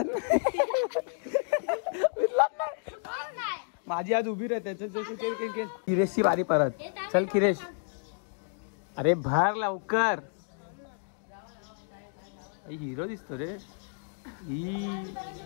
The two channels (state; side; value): silent; right; digital silence